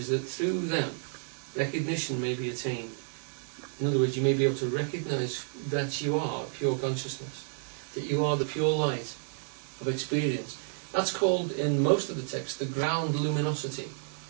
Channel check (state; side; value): silent; left; digital silence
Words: that through them, recognition may be attained. In other words, you may be able to recognize that you are pure consciousness, that you are the pure light of experience. That's called, in most of the text, the ground luminosity,